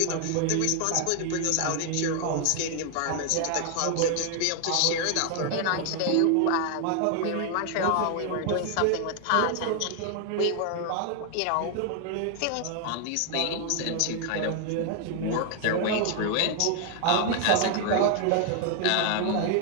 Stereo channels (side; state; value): both; different; correlation 0.00